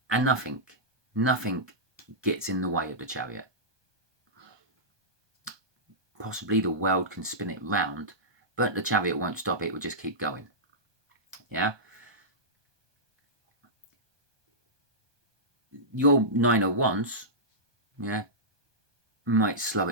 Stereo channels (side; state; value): left; late; 1.2 ms